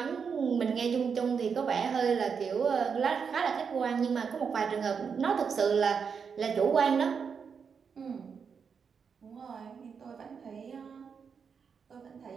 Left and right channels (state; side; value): quieter; left; 6.2 dB